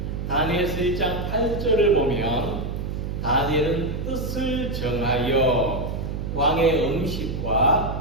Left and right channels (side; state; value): right; noise; hum, 4 dB below the sound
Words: 다니엘서 1장 8절을 보면 다니엘은 뜻을 정하여 왕의